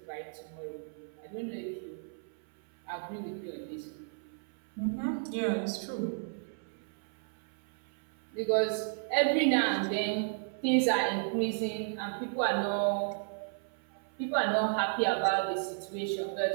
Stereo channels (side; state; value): left; silent; 55 dB below the other